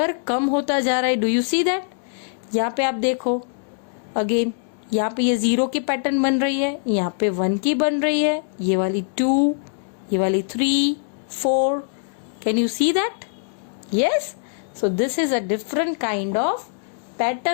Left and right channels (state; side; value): silent; right; digital silence